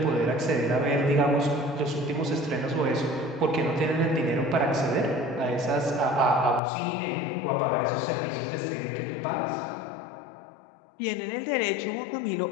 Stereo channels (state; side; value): drops out; right; at 6.6 s